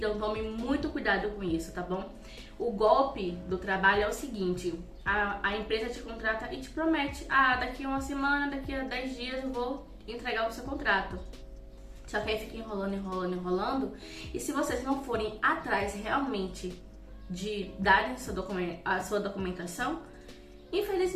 tome muito cuidado com isso, tá bom? O golpe do trabalho é o seguinte: a empresa te contrata e te promete, daqui a uma semana, daqui a 10 dias eu vou entregar o seu contrato. Só que aí fica enrolando. E se vocês não forem atrás realmente de darem a sua documentação,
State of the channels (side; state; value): both; identical; correlation 1.00